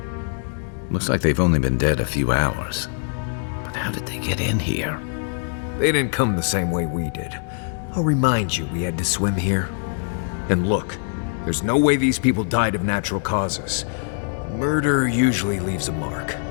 Looks like they've only been dead a few hours. But how did they get in here? They didn't come the same way we did. I'll remind you, we had to swim here. And look, there's no way these people died of natural causes. Murder usually leaves a mark.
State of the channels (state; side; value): silent; right; 62 dB below the other